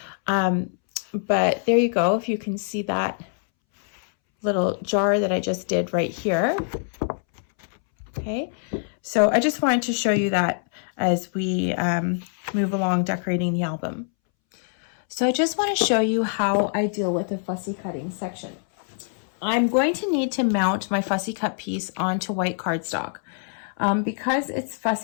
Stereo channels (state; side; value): silent; right; 62 dB below the other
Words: But there you go. If you can see that little jar that I just did right here. Okay. So I just wanted to show you that as we move along decorating the album. So I just want to show you how I deal with the fussy cutting section. I'm going to need to mount my fussy cut piece onto white cardstock. Because it's